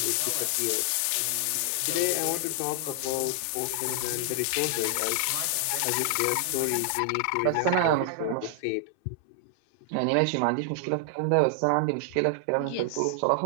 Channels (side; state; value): both; different; correlation 0.00